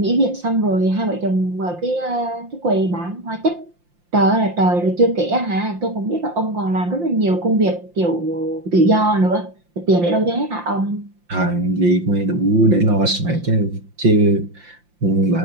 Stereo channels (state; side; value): late; left; 5.7 ms